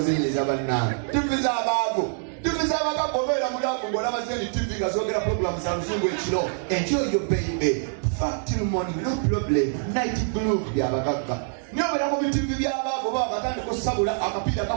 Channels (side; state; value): left; silent; 59 dB below the other